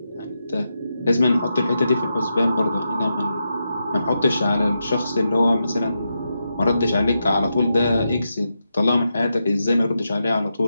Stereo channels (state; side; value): inverted; both; correlation -0.87